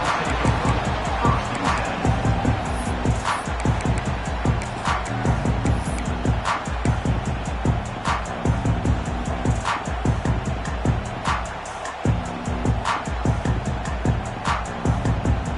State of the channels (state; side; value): identical; both; correlation 1.00